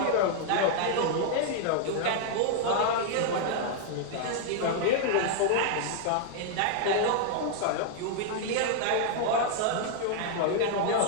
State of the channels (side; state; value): both; different; correlation -0.01